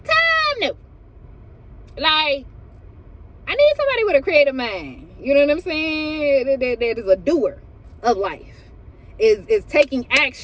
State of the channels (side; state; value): both; identical; correlation 1.00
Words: time, no. Like, I need somebody with a creative mind. You know what I'm saying? That is a doer of life. Is taking